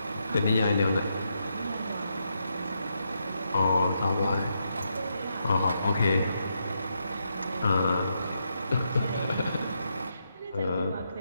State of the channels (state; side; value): inverted; both; correlation -0.81